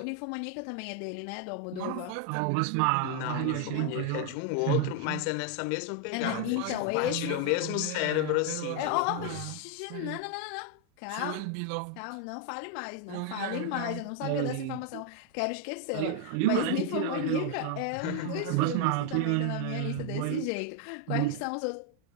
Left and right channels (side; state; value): both; different; correlation 0.00